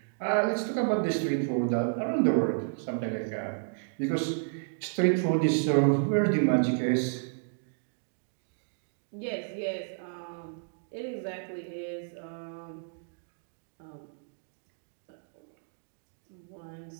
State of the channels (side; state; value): left; silent; digital silence